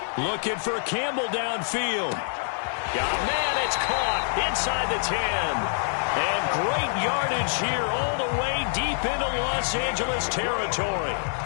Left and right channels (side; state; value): right; silent; digital silence